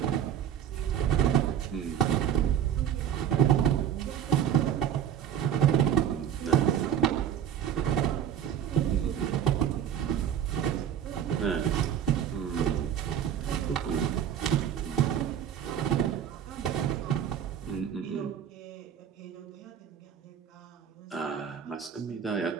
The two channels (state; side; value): quieter; left; 9.4 dB